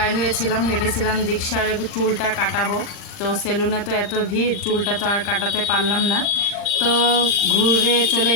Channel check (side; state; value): right; late; 39 ms